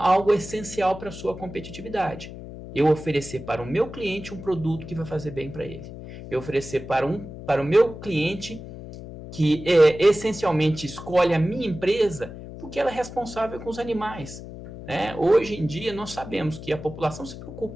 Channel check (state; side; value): noise; left; hum, 12 dB below the sound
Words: essencial para a sua competitividade. Eu oferecer para o meu cliente um produto que vai fazer bem para ele. Eu oferecer para o meu cliente que essencialmente escolhe a minha empresa porque ela é responsável com os animais. Né? Hoje em dia nós sabemos que a população se